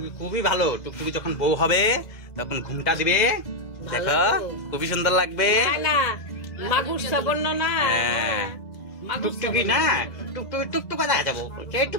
খুবই ভালো। টুকটুকি যখন বউ হবে তখন ঘুমটা দিবে, দেখো খুবই সুন্দর লাগবে। টুকটুকি না টুকটুকি টুকটুকা দেখা যাবো,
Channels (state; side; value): late; right; 2.0 ms